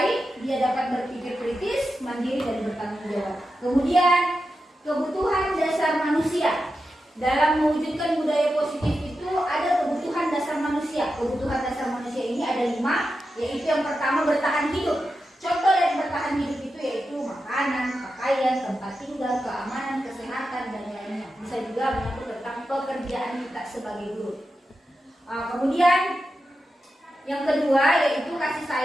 dia dapat berpikir kritis, mandiri, dan bertanggung jawab. Kemudian kebutuhan dasar manusia. Dalam mewujudkan budaya positif itu ada kebutuhan dasar manusia. Kebutuhan dasar manusia ini ada 5, yaitu yang pertama bertahan hidup. Contoh dari bertahan hidup itu yaitu makanan, pakaian, tempat tinggal, keamanan, kesehatan, dan lainnya. Bisa juga menyangkut tentang pekerjaan kita sebagai guru. Kemudian yang kedua yaitu kasih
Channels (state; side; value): normal; both; correlation 0.90